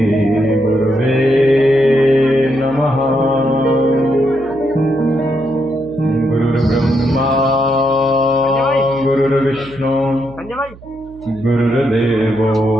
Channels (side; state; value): right; noise; hum, 21 dB below the sound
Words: गुरुवे नमः। गुरुर्ब्रह्मा गुरुर्विष्णु गुरुर्देवो